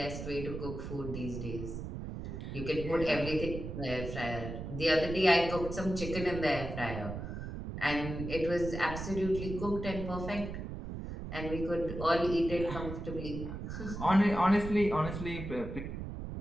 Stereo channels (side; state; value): right; noise; rumble, 7 dB below the sound